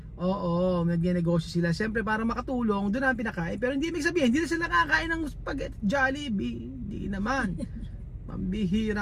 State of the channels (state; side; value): identical; both; correlation 1.00